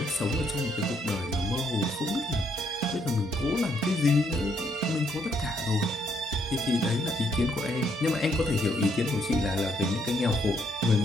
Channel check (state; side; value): normal; both; correlation 0.72